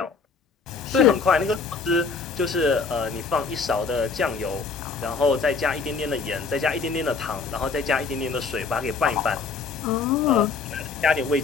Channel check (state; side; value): quieter; right; 4.8 dB